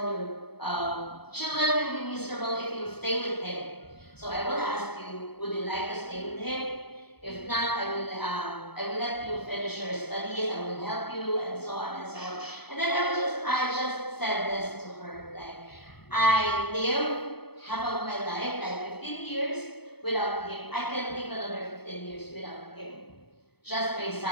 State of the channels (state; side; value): late; right; 0.97 ms